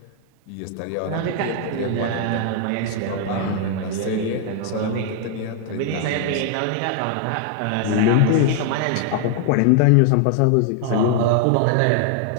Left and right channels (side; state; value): both; different; correlation 0.00